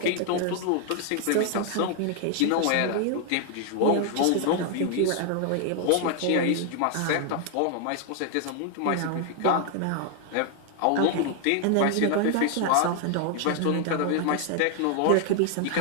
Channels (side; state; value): both; different; correlation 0.00